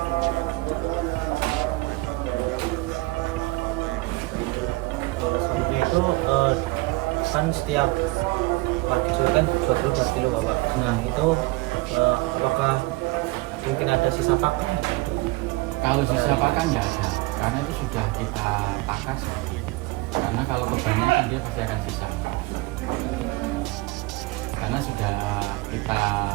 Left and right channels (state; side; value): quieter; left; 22.7 dB